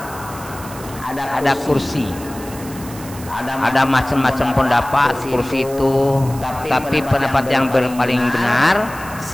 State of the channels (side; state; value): right; noise; hiss, 16 dB below the sound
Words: Ada kursi. Ada macam-macam pendapat kursi itu, tapi pendapat yang paling benar